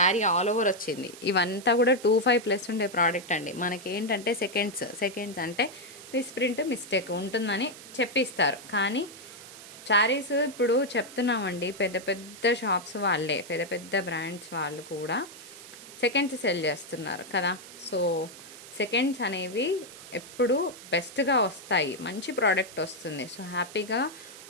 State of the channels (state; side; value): noise; right; hiss, 16 dB below the sound